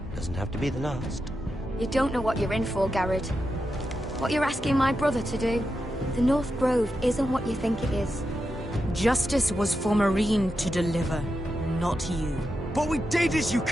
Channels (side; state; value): both; normal; correlation 0.88